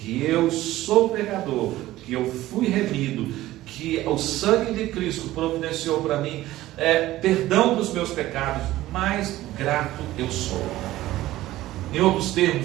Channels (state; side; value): quieter; left; 15.8 dB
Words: eu sou pecador, que eu fui remido, que o sangue de Cristo providenciou para mim perdão dos meus pecados, mais grato eu sou. Em outros